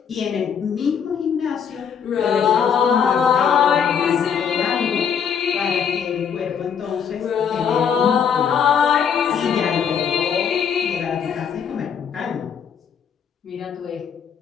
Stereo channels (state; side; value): quieter; right; 7.4 dB